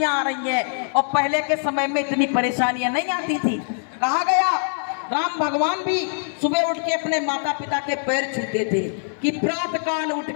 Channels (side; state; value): right; silent; digital silence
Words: आ रही हैं। और पहले के समय में इतनी परेशानियां नहीं आती थी। कहा गया राम भगवान भी सुबह उठ के अपने माता पिता के पैर छूते थे कि प्रातः काल उठ